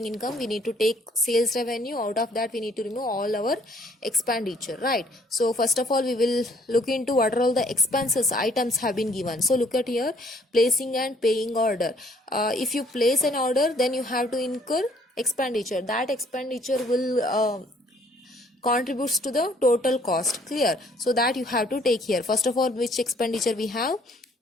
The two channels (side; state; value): both; normal; correlation 0.61